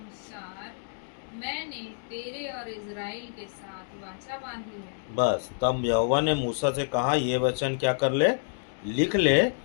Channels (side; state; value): right; silent; digital silence